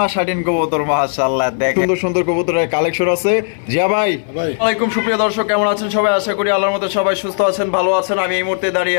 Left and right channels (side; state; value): right; silent; 67 dB below the other